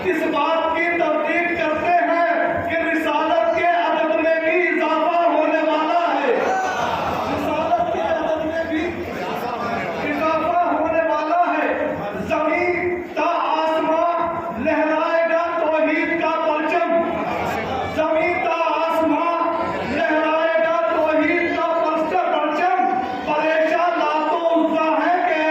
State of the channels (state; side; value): identical; both; correlation 1.00